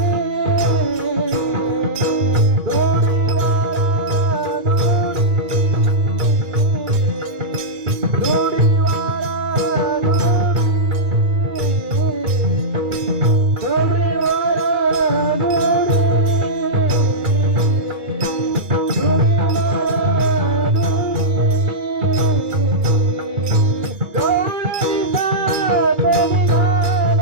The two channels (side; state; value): left; late; 2.3 ms